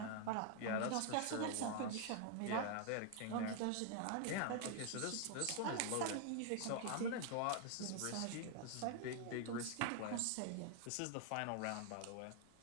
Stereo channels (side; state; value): both; different; correlation 0.00